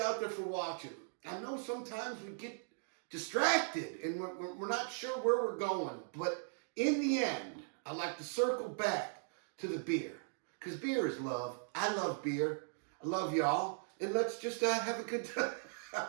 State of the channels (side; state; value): left; silent; digital silence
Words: there for watching. I know sometimes we get distracted and we're not sure where we're going, but in the end, I like to circle back to the beer, because beer is love. I love beer. I love y'all, and let's just have a good time.